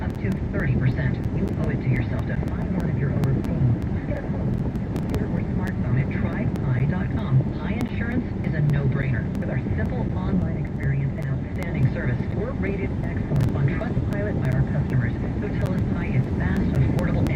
up to 30%. You owe it to yourself to find one if you're overpaying. Just get a phone, computer, or smartphone at trypi.com. Pi Insurance is a no-brainer. With our simple online experience and outstanding service, we're rated excellent on Trustpilot by our customers, who tell us Pi is fast, affordable,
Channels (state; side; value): identical; both; correlation 1.00